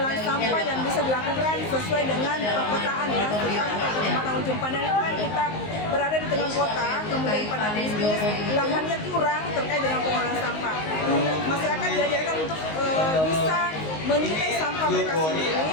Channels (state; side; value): late; right; 19 ms